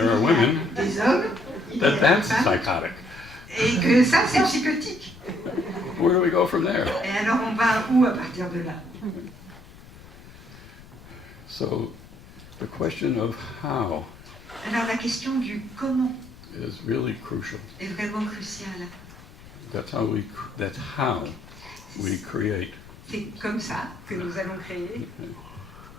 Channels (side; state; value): left; noise; rumble, 20 dB below the sound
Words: are women, des hommes, il y a that des that's femmes, psychotic? et que ça c'est psychotique? Where do we go from there? Et alors on va où à partir de là? So the question of how Alors la question du comment is really crucial. est vraiment cruciale. That's how we create. C'est comme ça que nous allons créer.